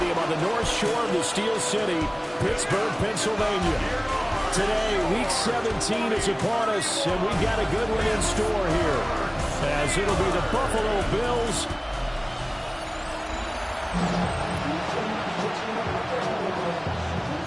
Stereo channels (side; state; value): both; identical; correlation 1.00